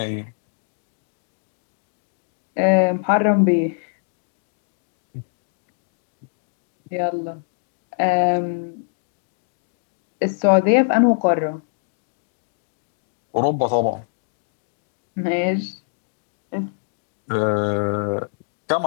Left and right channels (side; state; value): right; silent; digital silence